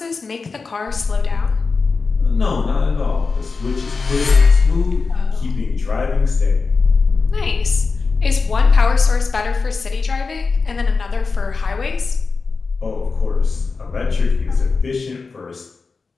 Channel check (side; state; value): right; quieter; 4.4 dB